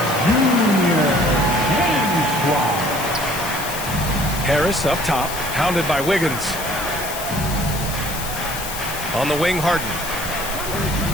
Harris up top, hounded by Wiggins. On the wing, Harden.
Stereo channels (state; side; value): noise; left; hiss, 8 dB below the sound